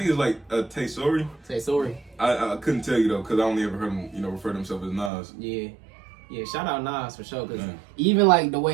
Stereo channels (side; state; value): left; drops out; at 5.1 s